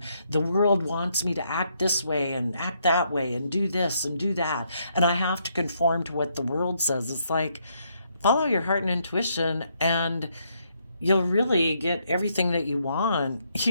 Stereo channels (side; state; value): both; inverted; correlation -0.74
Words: the world wants me to act this way and act that way and do this and do that, and I have to conform to what the world says. It's like, follow your heart and intuition, and you'll really get everything that you want.